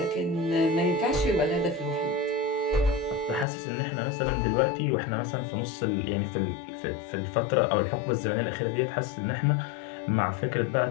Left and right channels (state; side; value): drops out; right; at 3.5 s